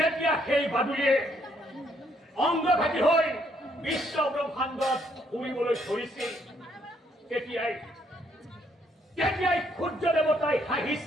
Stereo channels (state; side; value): normal; both; correlation 0.70